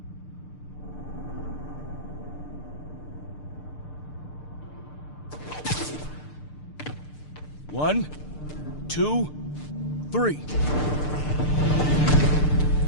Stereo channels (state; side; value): late; right; 6.7 ms